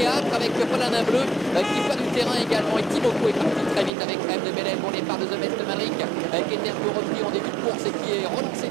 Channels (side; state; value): left; drops out; at 3.9 s